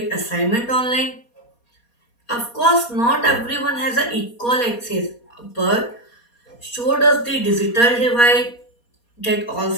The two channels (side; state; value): right; late; 4.2 ms